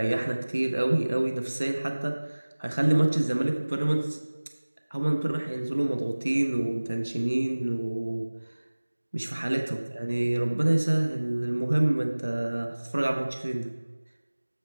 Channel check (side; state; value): both; inverted; correlation -1.00